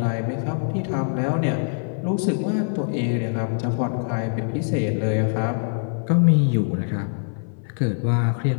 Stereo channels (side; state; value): right; silent; 58 dB below the other